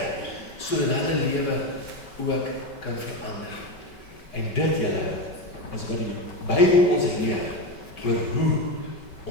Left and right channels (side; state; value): right; late; 5.2 ms